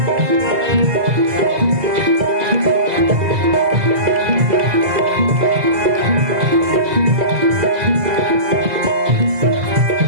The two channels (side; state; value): left; late; 2.0 ms